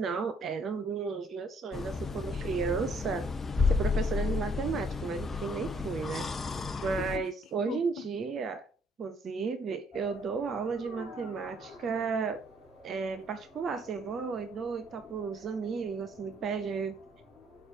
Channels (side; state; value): both; normal; correlation 0.66